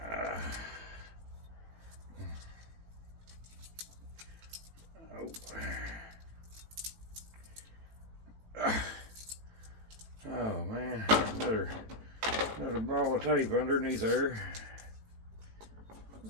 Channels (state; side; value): late; left; 18 ms